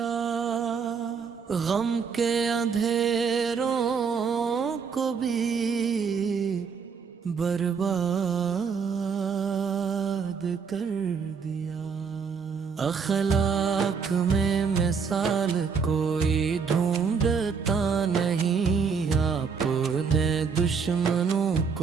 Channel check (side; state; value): left; quieter; 5.9 dB